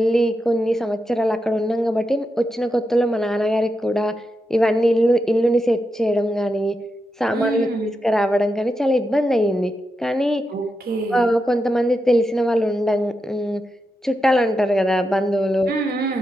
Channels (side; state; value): both; normal; correlation 0.87